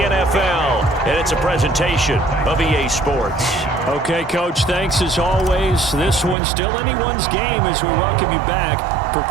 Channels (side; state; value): left; drops out; at 6.4 s